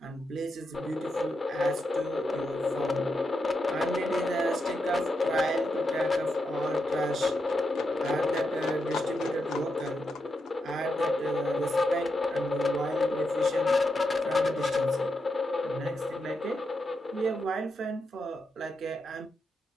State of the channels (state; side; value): normal; both; correlation 0.85